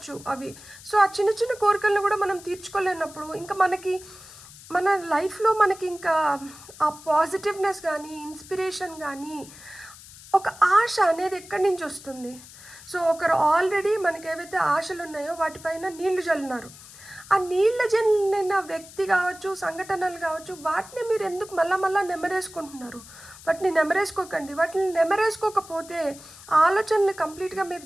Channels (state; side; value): noise; left; hiss, 18 dB below the sound